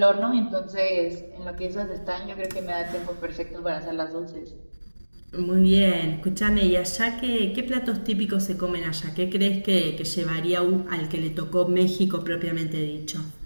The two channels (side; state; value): both; inverted; correlation -1.00